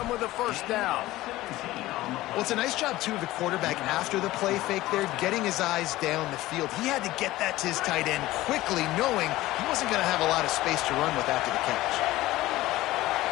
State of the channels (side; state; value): right; quieter; 17.1 dB